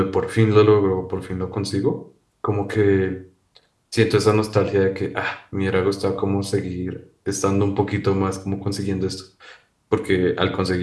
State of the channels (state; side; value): identical; both; correlation 1.00